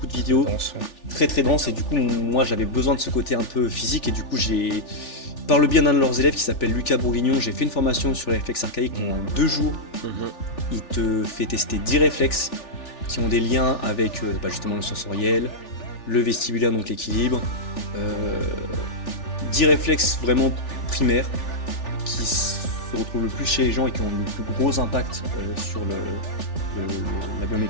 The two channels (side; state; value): right; late; 3.4 ms